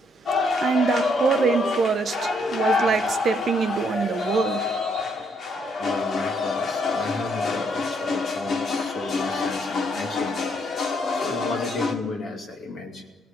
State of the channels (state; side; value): normal; both; correlation 0.72